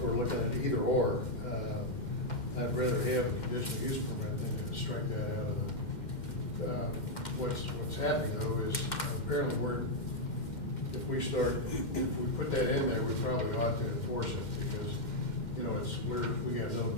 we're looking at either or, I'd rather have a conditional use permit than to strike that out of the, what's happening though is apparently if we put that in there, we probably ought to enforce it because, we have no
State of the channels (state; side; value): late; right; 2.1 ms